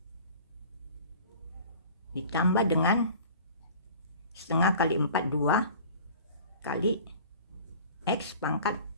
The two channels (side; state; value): both; inverted; correlation -0.44